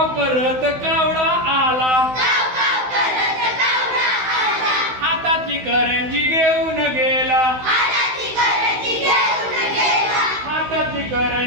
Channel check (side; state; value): left; late; 16 ms